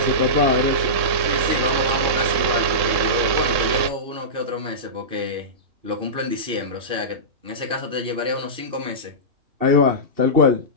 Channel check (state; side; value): late; left; 3.6 ms